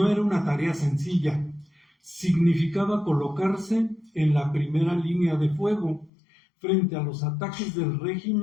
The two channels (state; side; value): drops out; right; at 6.1 s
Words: era una tarea sencilla. Significaba colocarse en la primera línea de fuego frente a los ataques del